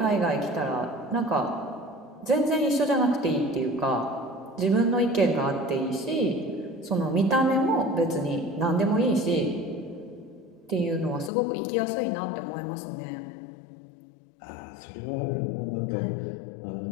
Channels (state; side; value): drops out; right; at 11.3 s